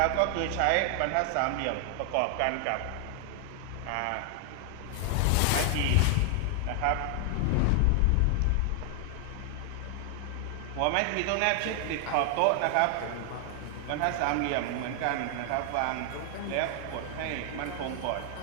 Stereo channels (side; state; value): both; different; correlation 0.00